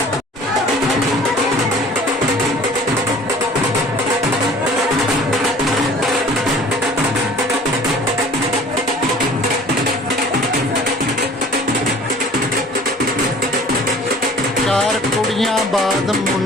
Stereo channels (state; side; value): normal; both; correlation 0.48